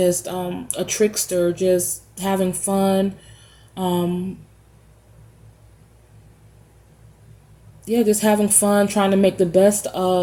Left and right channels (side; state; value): both; identical; correlation 1.00